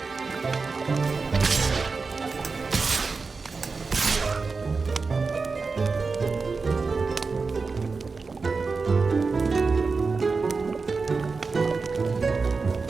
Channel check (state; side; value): quieter; left; 4.4 dB